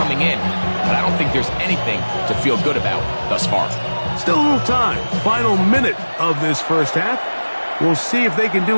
in, but I don't think there's anything to feel good about thus far. Still a little time. Final minute of this first half. We'll see if they can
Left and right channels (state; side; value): inverted; both; correlation -1.00